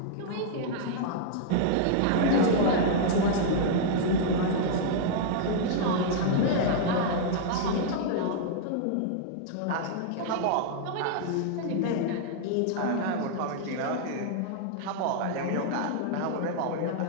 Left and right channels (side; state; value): both; different; correlation -0.01